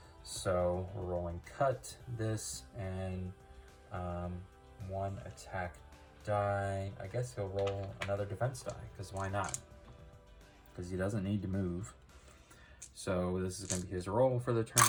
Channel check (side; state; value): both; identical; correlation 1.00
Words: So we're rolling cut, this, and 1 attack die. I guess he'll roll another defense die, because why not? Because he doesn't need to move. So this is going to be his roll for the turn.